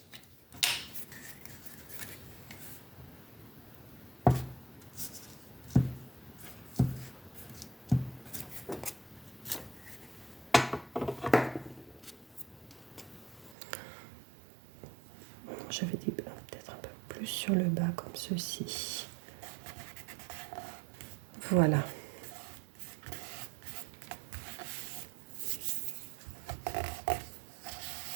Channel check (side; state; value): left; drops out; at 13.6 s